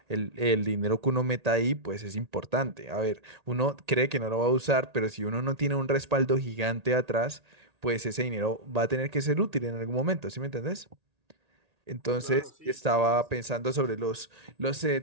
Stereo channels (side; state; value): left; late; 1.8 ms